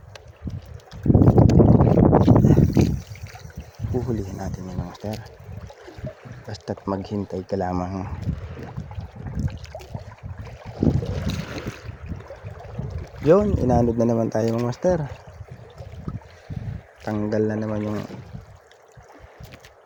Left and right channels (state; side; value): identical; both; correlation 1.00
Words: Huhulihin natin yun mga master. Basta't maghintay ka lamang. Yun, inanod na naman tayo mga master. Tanggal na naman yung